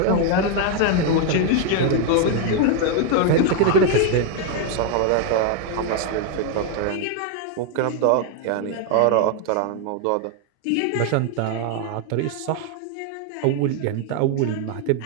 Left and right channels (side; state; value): both; different; correlation 0.01